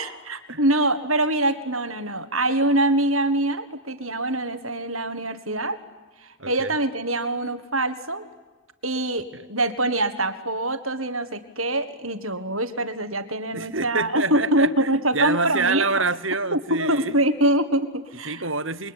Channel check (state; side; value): normal; both; correlation -0.11